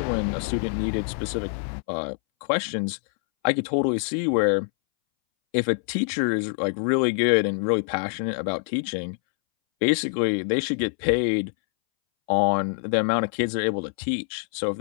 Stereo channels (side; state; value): right; silent; 62 dB below the other